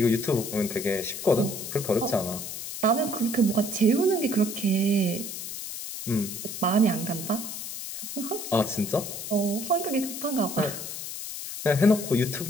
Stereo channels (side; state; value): left; noise; hiss, 7 dB below the sound